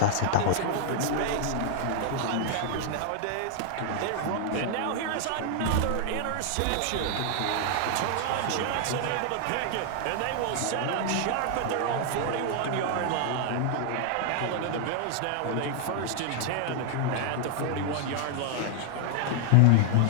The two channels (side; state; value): both; different; correlation 0.00